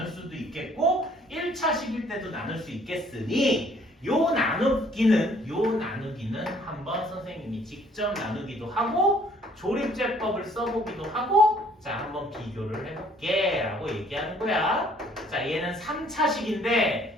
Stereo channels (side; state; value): both; normal; correlation 0.60